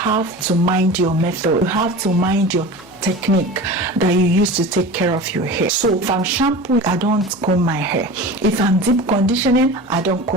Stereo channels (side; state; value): left; noise; hum, 29 dB below the sound